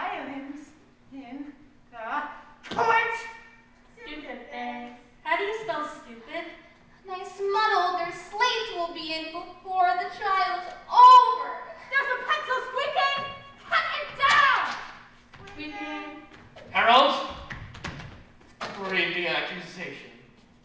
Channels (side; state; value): both; identical; correlation 1.00